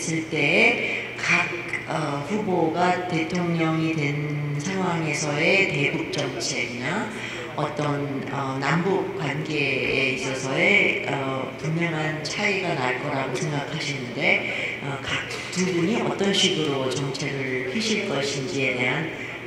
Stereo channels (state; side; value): identical; both; correlation 1.00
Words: 때 각 후보가 대통령이 된 상황에서의 대북 정책이나 어떤 남북 관계에 있어서의 분명한 차이가 날 거라고 생각하시는데 각 두 분이 어떤 식으로 정책을 펴실 것인지에 대한